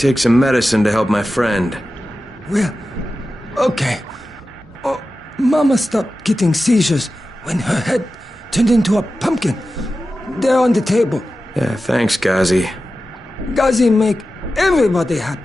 some medicine to help my friend. Well, okay. Oh, Mama stopped getting seizures when her head turned into a pumpkin. They're on the table. Yeah, thanks, Ghazi. Ghazi make everybody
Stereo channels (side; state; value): both; normal; correlation 0.93